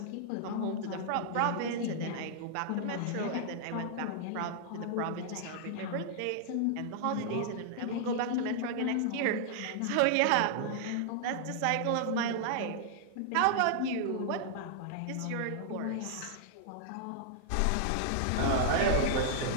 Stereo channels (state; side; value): different; both; correlation -0.01